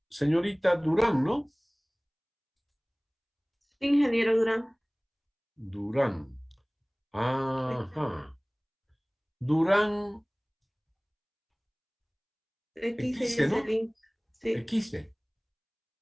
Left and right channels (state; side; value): identical; both; correlation 1.00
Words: Señorita Durán, ¿no? Ingeniero Durán. Durán. Ajá. Durán X X, es ¿no? el link. Sí, X. sí.